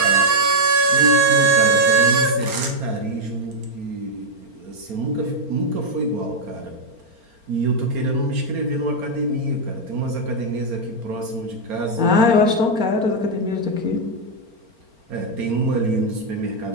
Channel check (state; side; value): late; left; 4.4 ms